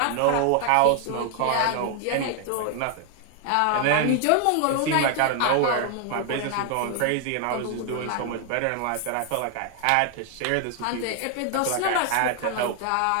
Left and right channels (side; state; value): both; different; correlation 0.00